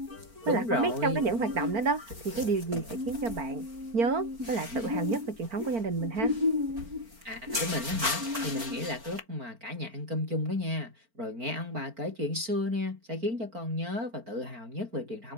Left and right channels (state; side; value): late; left; 4.4 ms